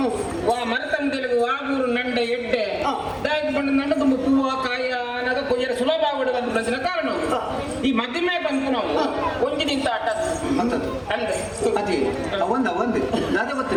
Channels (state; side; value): identical; both; correlation 1.00